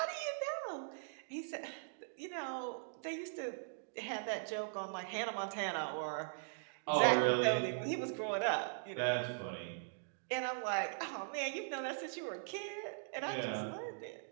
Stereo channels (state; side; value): silent; left; digital silence